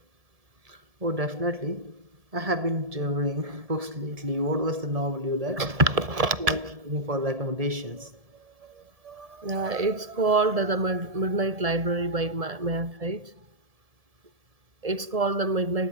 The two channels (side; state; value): left; late; 1.7 ms